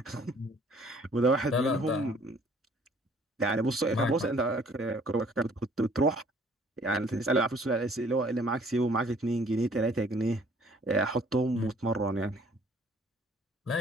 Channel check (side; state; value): both; normal; correlation 0.58